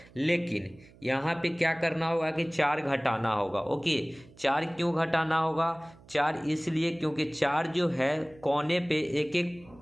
लेकिन यहाँ पे क्या करना होगा कि 4 घटाना होगा। ओके, 4 क्यों घटाना होगा? 4 इसलिए क्योंकि 4 जो है कोने पे एक एक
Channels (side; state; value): right; noise; hum, 24 dB below the sound